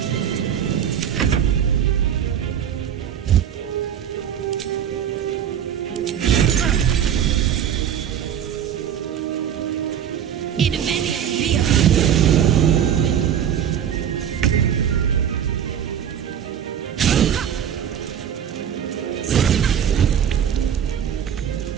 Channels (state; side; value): quieter; left; 9.1 dB